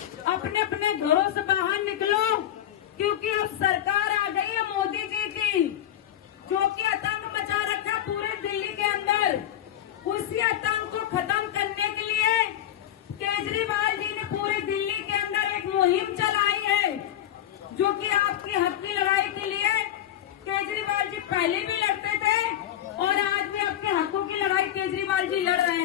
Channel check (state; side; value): quieter; right; 11.6 dB